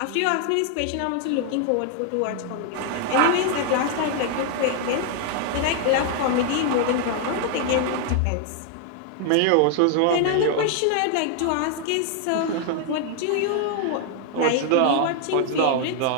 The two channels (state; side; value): different; both; correlation 0.00